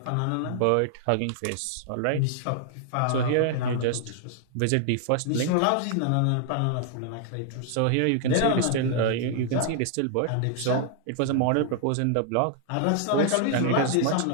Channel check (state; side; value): different; both; correlation 0.00